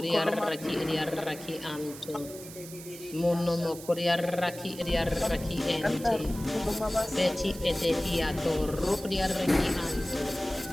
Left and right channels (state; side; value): noise; right; hiss, 15 dB below the sound